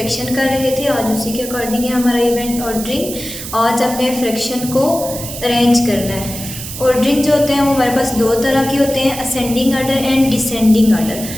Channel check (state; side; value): noise; right; hiss, 9 dB below the sound